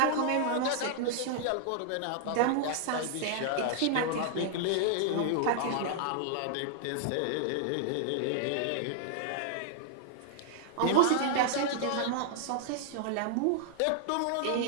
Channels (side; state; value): both; different; correlation -0.01